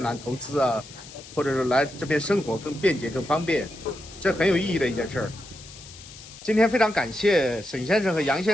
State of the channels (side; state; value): left; noise; hiss, 17 dB below the sound